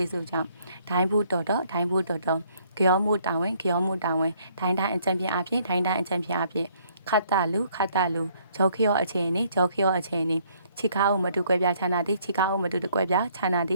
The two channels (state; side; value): inverted; both; correlation -0.65